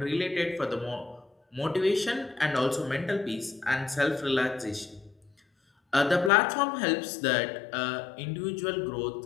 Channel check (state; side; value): drops out; right; at 6.3 s